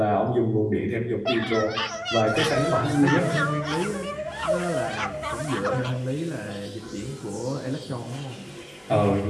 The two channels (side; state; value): both; identical; correlation 1.00